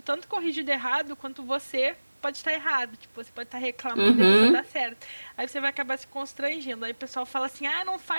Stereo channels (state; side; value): inverted; both; correlation -1.00